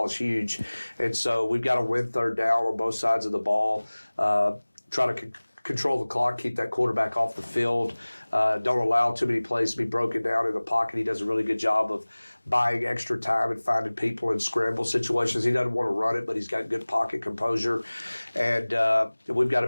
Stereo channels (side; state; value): both; inverted; correlation -1.00